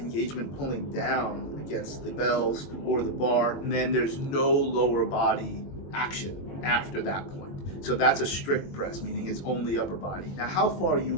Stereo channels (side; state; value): right; late; 21 ms